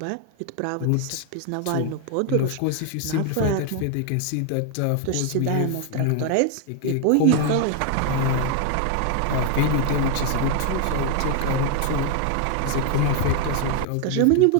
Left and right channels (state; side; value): different; both; correlation 0.01